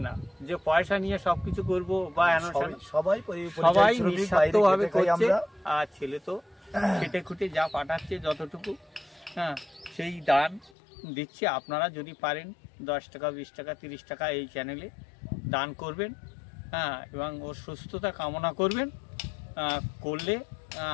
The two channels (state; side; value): drops out; right; at 10.7 s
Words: না যে পয়সা নিয়ে সবকিছু করবো বা সবাই নিঃস্বার্থ ভাবে করছে। আর ছেলে তো খেটে খুটে যা পাঠাচ্ছে যতটুকু, হ্যাঁ, সেই দান দিচ্ছে। আপনারা যদি পারেন 10 টাকা 20 টাকা 30 টাকা এই চ্যানেলে দান করবেন। হ্যাঁ, এবং ওর সুস্থতা কামনা করবেন। করলে